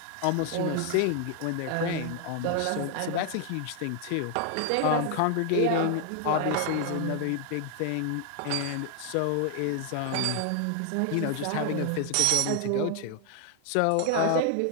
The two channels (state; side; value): different; both; correlation 0.00